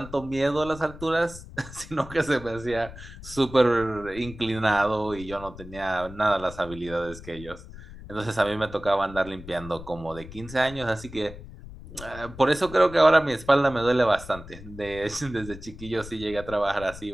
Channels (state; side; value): noise; left; rumble, 15 dB below the sound